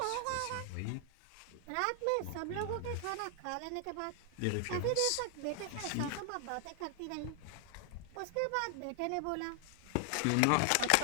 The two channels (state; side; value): different; both; correlation 0.00